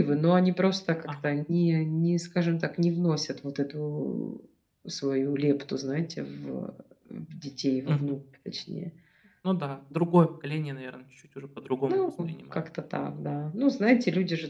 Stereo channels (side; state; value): both; identical; correlation 1.00